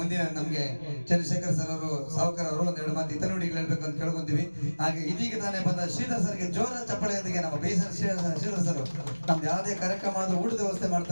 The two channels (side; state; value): both; inverted; correlation -1.00